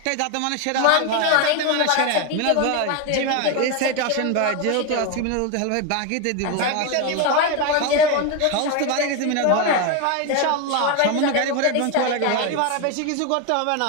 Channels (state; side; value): different; both; correlation 0.02